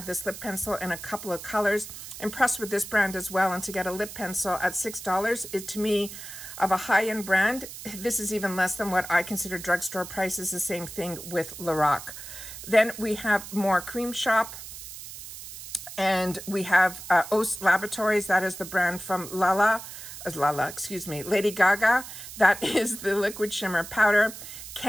this lip pencil in a couple of colors. Impressed with this brand as well. And to get a lip pencil at $6, it to me, of a high-end brand, this is even less than what I consider drugstore prices. The same thing with Lorac. Then we have more Cream Shop. And we have Os Laboratories. That is the brand from Lady Gaga. That is the liquid shimmer powder.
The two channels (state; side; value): noise; right; hiss, 12 dB below the sound